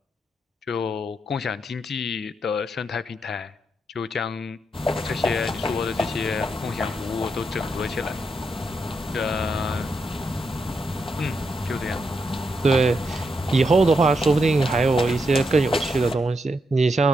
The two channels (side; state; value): both; normal; correlation 0.82